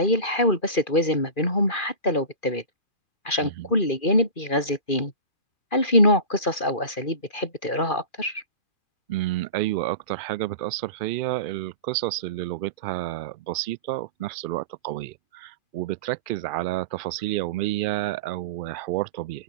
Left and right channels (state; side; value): late; right; 2.4 ms